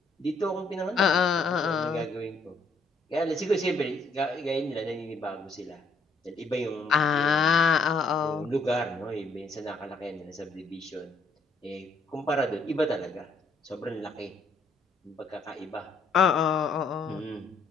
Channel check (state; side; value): quieter; right; 3.4 dB